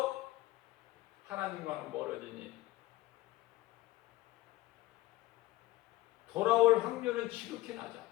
하나님과는 멀어지니 돌아올 확률은 지극히 낮아.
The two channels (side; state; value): right; quieter; 17.3 dB